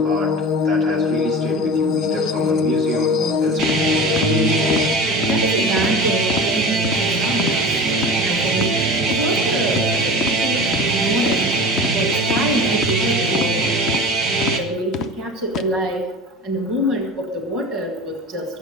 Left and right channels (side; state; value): both; normal; correlation 0.34